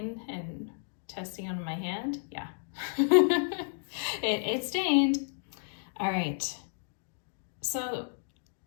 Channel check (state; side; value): silent; right; digital silence